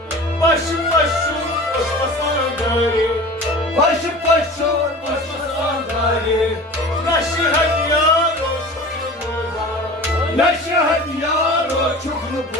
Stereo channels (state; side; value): normal; both; correlation 0.38